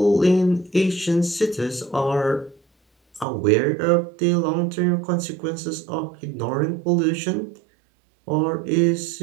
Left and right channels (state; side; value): drops out; left; at 3.2 s